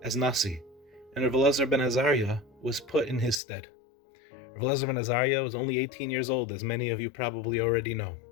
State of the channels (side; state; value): right; drops out; at 3.4 s